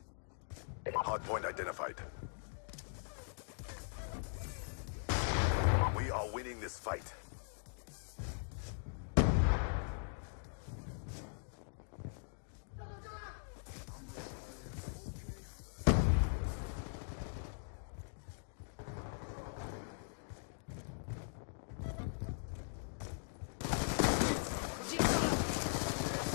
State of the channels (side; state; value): right; silent; digital silence